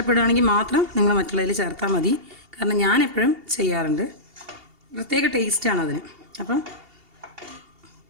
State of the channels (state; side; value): late; left; 2.8 ms